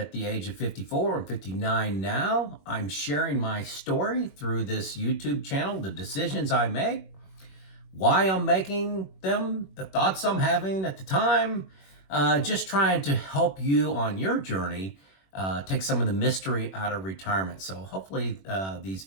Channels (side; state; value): right; late; 21 ms